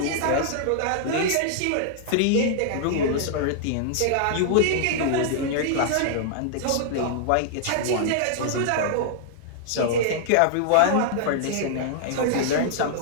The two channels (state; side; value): different; both; correlation -0.01